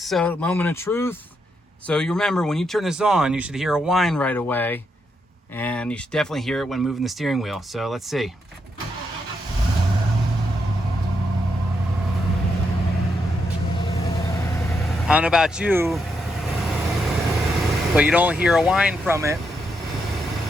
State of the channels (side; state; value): both; normal; correlation 0.81